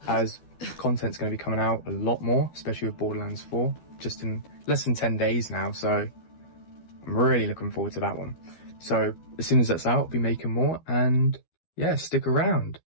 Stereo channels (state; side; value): late; right; 12 ms